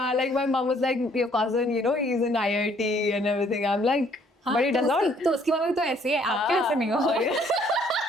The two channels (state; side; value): normal; both; correlation 0.63